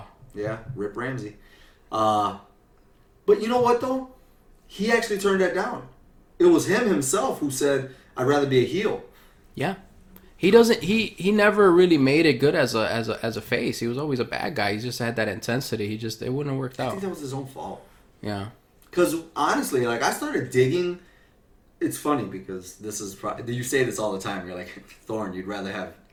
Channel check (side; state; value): both; identical; correlation 1.00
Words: Yeah, Rip Ramsey. But you know what though? He actually turned that down. It was him himself who said, "I'd rather be a heel." Yeah. He doesn't. He never really made it good as a face. He was always a bad guy. He just had that intensity. It wouldn't have worked I out. think that was his own fault. Yeah. Because honestly, like I started digging. It's funny because this is you say this all the time. You're like, Thorn, you'd rather have